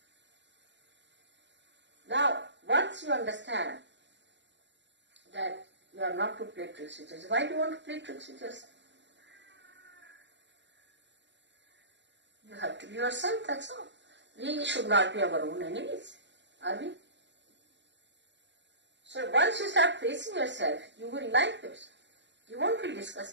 Now, once you understand that you are not to play tricks with yourself, why do you want to play tricks with yourself? You have to be yourself, that's all. We should not be our own enemies, are we? So once you start facing yourself, you will like yourself. You won't feel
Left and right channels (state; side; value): late; left; 0.52 ms